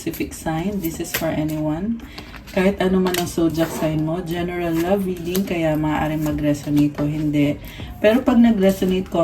sign. This is for anyone. Kahit ano man ang zodiac sign mo, general love reading, kaya maaaring mag-resonate o hindi. Pero pag nag-resonate,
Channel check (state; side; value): identical; both; correlation 1.00